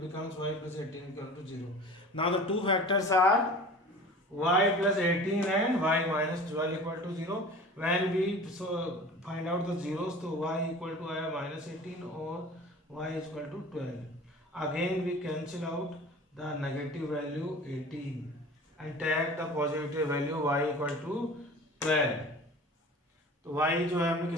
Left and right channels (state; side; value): normal; both; correlation 0.40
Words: becomes y plus 18 equal to 0। Now the two factors are y plus 18 and y minus 12 equal to 0। When we find out the zeros, तो y equal to आया minus 18 और y is equal to 12। Again we cancel out the negative value 18 and take the positive value y equal to 12। तो y जो है हमने